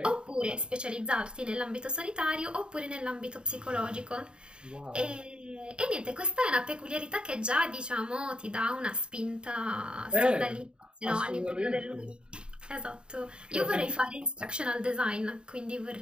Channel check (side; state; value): left; late; 0.051 ms